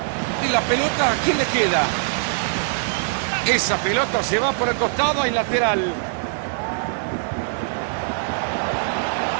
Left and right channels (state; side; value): silent; left; digital silence